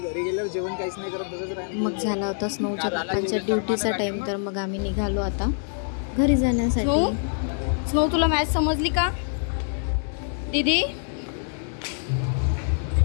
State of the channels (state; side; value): silent; right; digital silence